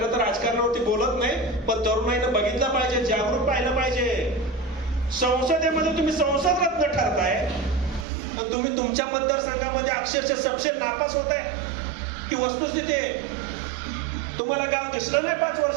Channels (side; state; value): left; drops out; at 8.1 s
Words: तर राजकारणावरती बोलत नाही, पण तरुणाईनं बघितलं पाहिजे, जागरूक पाहिलं पाहिजे. संसदेमध्ये तुम्ही संसद रत्न ठरताय, पण तुम्ही तुमच्या मतदारसंघामध्ये अक्षरशः सपशेल नापास होताय. ही वस्तुस्थिती आहे. तुम्हाला गाव दिसलं नाही 5